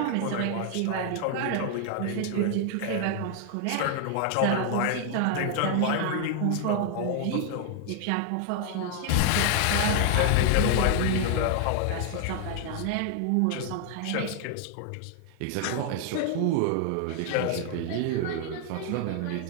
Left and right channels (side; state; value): both; different; correlation 0.00